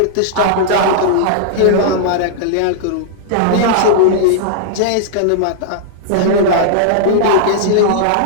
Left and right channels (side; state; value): both; different; correlation -0.02